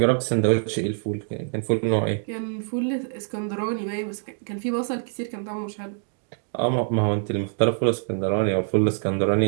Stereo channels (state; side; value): silent; left; 56 dB below the other